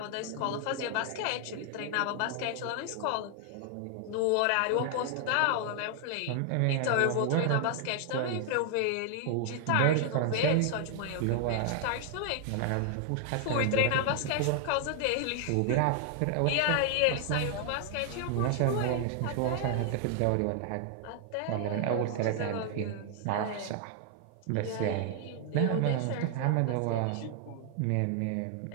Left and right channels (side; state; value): both; different; correlation 0.00